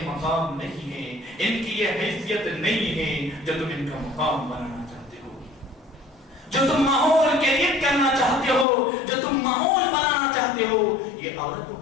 مقام نہیں ہے، ان کی یہ حیثیت نہیں ہے جو تم ان کا مقام بنانا چاہتے ہو، جو تم ماحول کریٹ کرنا چاہتے ہو، جو تم ماحول بنانا چاہتے ہو، یہ عورتوں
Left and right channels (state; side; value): drops out; right; at 8.7 s